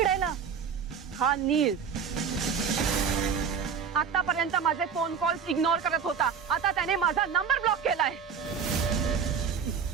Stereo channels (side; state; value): left; quieter; 6.7 dB